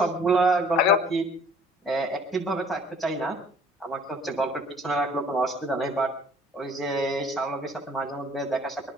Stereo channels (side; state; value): both; normal; correlation 0.53